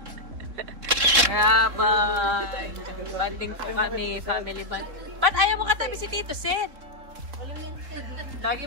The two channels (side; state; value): left; late; 3.7 ms